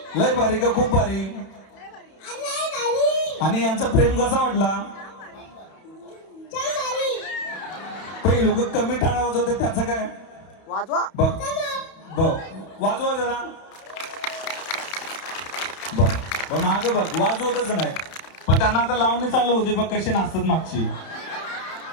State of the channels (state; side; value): late; right; 31 ms